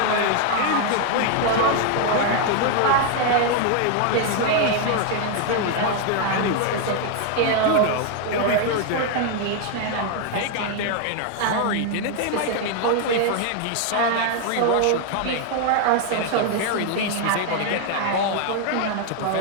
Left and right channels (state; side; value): different; both; correlation 0.01